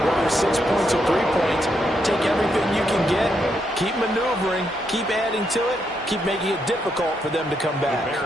Whether 6 points or 3 points, take everything you can get, keep maneuvering, keep adding to it, keep making it difficult for them to come back.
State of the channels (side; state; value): both; normal; correlation 0.79